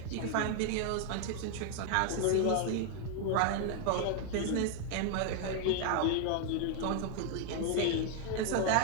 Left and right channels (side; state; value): both; different; correlation 0.00